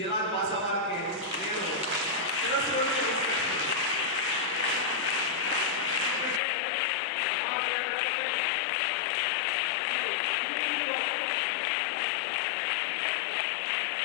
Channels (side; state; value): right; drops out; at 6.4 s